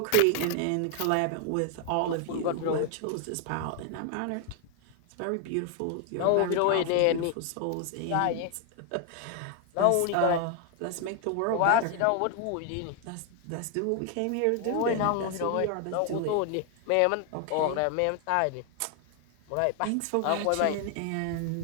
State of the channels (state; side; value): different; both; correlation 0.00